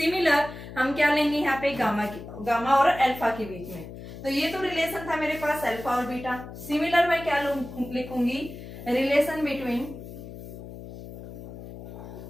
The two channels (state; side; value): noise; left; hum, 13 dB below the sound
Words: हम क्या लेंगे यहाँ पे गामा और अल्फा के बीच में। तो ये तो रिलेशन था मेरे पास अल्फा और बीटा। सिमिलर मैं क्या लिखूंगी relation between